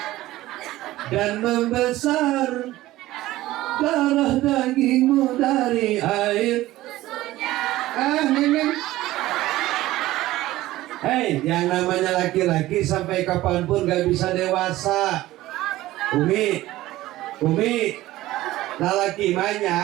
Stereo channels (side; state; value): left; quieter; 16.5 dB